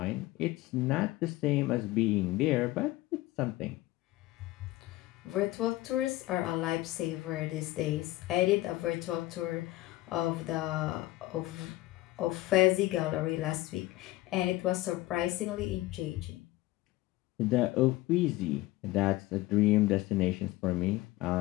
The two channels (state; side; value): quieter; right; 18.0 dB